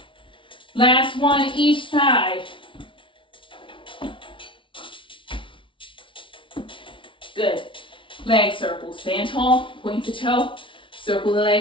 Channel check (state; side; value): late; right; 0.25 ms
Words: Last one each side. Good. Leg circle. Stand tall, point the toe, circle the